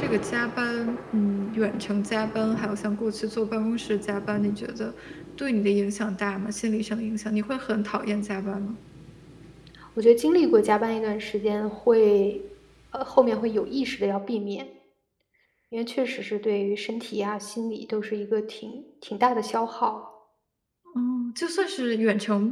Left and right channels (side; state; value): both; identical; correlation 1.00